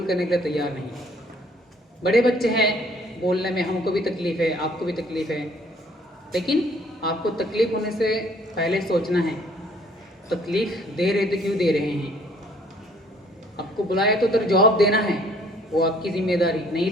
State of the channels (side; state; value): both; normal; correlation 0.59